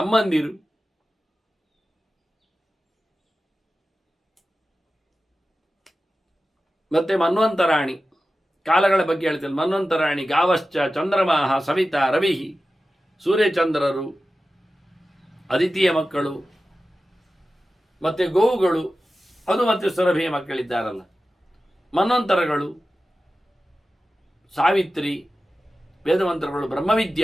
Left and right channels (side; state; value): both; normal; correlation 0.94